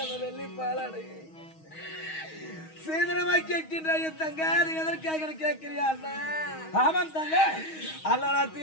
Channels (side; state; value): right; late; 6.3 ms